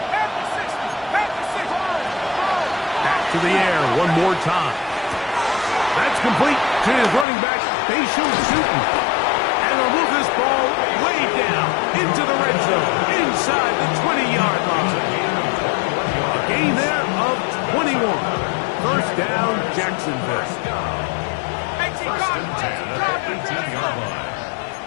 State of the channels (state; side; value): drops out; right; at 7.2 s